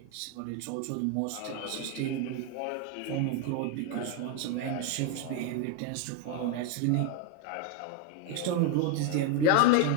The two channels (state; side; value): different; both; correlation 0.01